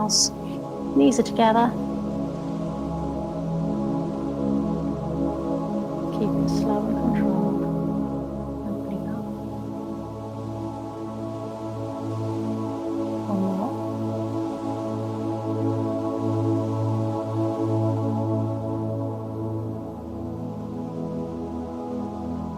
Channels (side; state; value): both; identical; correlation 1.00